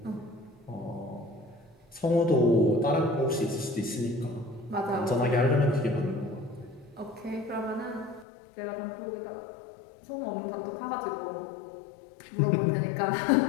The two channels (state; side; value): drops out; right; at 8.2 s